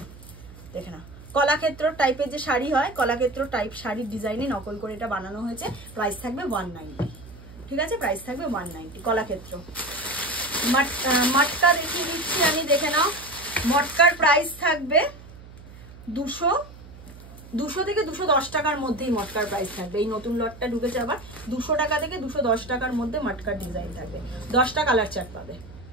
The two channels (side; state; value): right; noise; hum, 18 dB below the sound